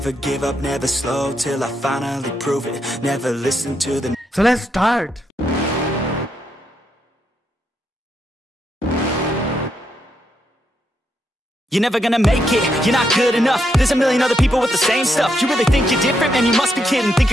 give up, never slow, till I finally prove it. Never listen to the... So let's start. You're never gonna make it, you're not good enough. There's a million other people with the same stuff. You really think you're different? Man, you must be kidding. Think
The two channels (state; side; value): normal; both; correlation 0.80